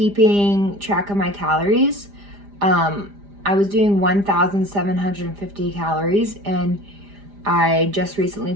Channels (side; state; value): left; late; 5.0 ms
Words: track of my calories. I was doing 1,750 calories, and I just recently,